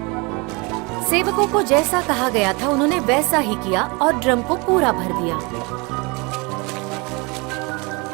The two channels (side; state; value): left; quieter; 28.2 dB